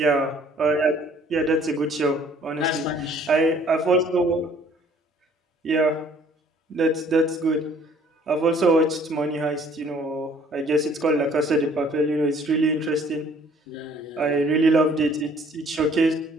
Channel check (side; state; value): both; normal; correlation 0.58